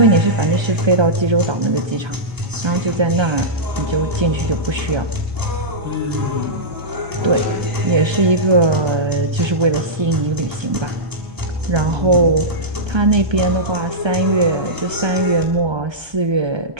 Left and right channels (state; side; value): late; left; 1.3 ms